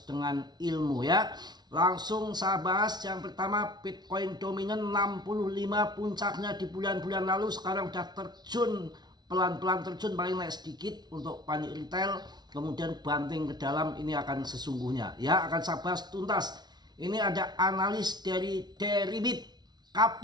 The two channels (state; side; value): late; left; 0.20 ms